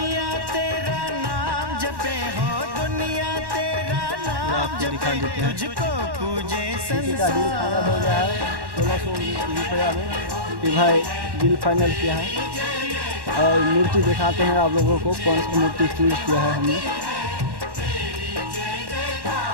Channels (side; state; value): left; late; 1.1 ms